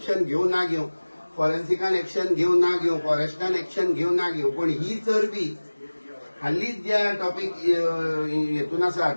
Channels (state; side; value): inverted; both; correlation -1.00